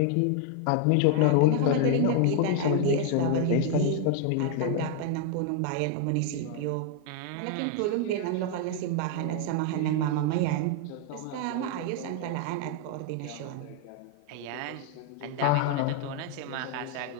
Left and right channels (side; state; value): both; different; correlation 0.00